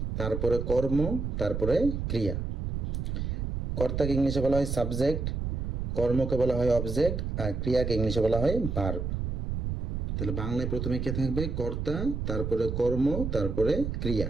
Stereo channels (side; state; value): right; noise; rumble, 2 dB below the sound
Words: তারপরে কর্ম, তারপরে ক্রিয়া। কর্তাকে ইংলিশে বলা হয় সাবজেক্ট, কর্মকে বলা হয় অবজেক্ট, আর ক্রিয়াকে ইংলিশে বলা হয় ভার্ব। তাহলে বাংলায় প্রথমে কে থাকবে? কর্তা, তারপরে কর্ম, তারপরে ক্রিয়া,